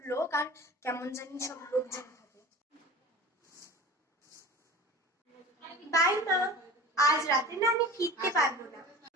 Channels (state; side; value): normal; both; correlation 0.37